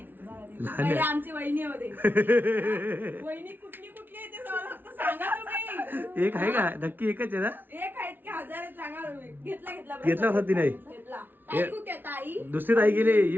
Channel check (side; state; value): left; late; 0.095 ms